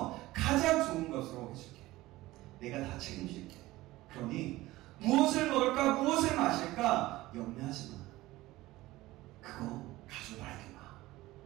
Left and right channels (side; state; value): left; quieter; 18.0 dB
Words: 가장 좋은 것으로 해줄게. 내가 다 책임질게. 그러니 무엇을 먹을까? 무엇을 마실까? 염려하지 마. 그거 가지고 나에게 마.